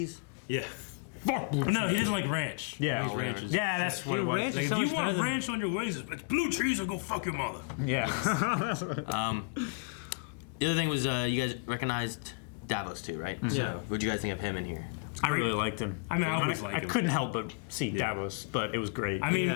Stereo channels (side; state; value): right; quieter; 32.4 dB